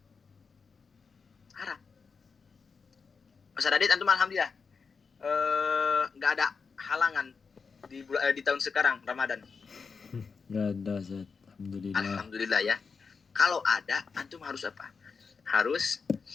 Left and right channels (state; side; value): quieter; right; 5.2 dB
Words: Haram. Ustaz Adit antum alhamdulillah nggak ada halangan di tahun sekarang Ramadan. Nggak ada Ustaz. Alhamdulillah. Alhamdulillah ya. Kalau ada antum harus apa? Harus